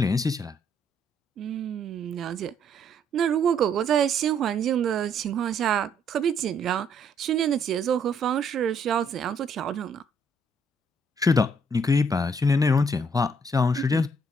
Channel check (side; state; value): both; normal; correlation 0.68